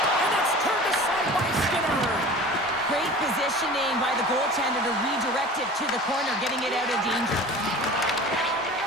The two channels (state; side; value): normal; both; correlation 0.39